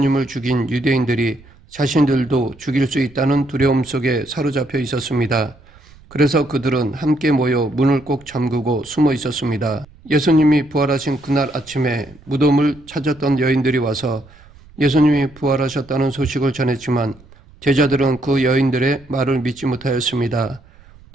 죽인 유대인들이 자신들도 죽일 수 있다는 두려움 속에 사로잡혀 있었습니다. 그래서 그들은 함께 모여 문을 꼭 잠그고 숨어 있었습니다. 예수님이 부활하신 그날 아침에 무덤을 찾았던 여인들이 와서 예수님이 부활하셨다는 소식을 전했지만 제자들은 그 여인들의 말을 믿지 못하였습니다.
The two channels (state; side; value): noise; right; rumble, 25 dB below the sound